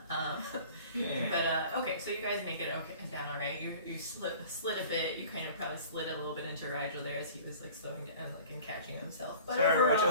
Yeah. But okay, so you guys make it okay down all right. You slid a bit. You kind of probably slid a little bit into Rigel there as he was like slowing down and catching himself. But Sorry, overall,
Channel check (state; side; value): inverted; both; correlation -0.45